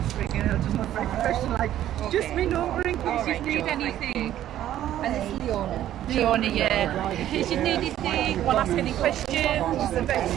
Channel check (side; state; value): left; quieter; 12.2 dB